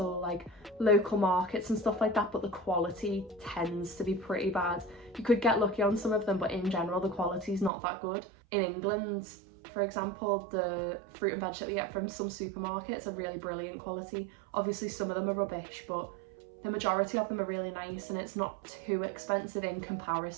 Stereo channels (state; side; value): drops out; left; at 7.7 s